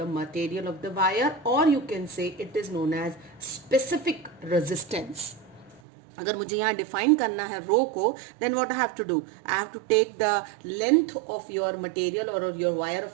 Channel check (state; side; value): drops out; left; at 5.8 s